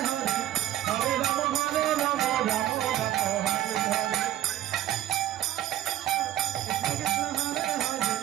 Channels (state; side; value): quieter; left; 13.0 dB